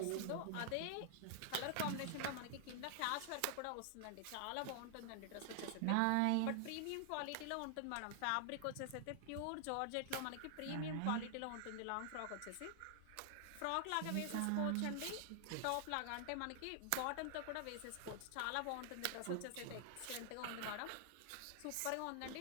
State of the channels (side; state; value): both; different; correlation 0.00